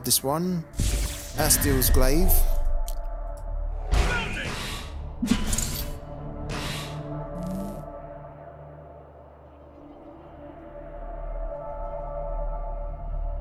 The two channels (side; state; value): both; identical; correlation 1.00